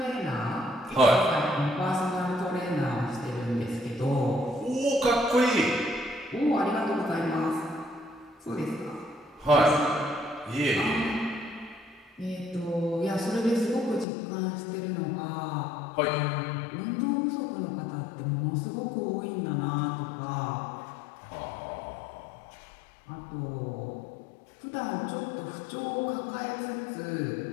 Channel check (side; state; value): right; drops out; at 14.1 s